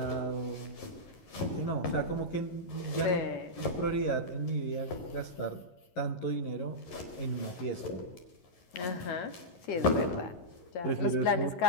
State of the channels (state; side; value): late; right; 11 ms